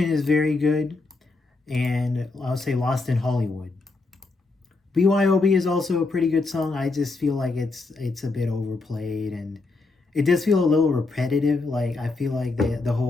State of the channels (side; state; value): right; quieter; 3.6 dB